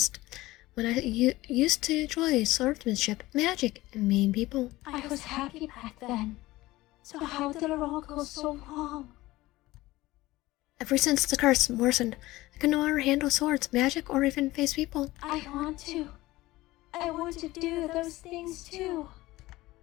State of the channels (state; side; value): quieter; right; 18.4 dB